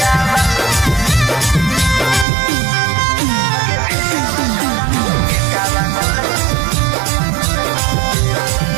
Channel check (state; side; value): drops out; left; at 2.2 s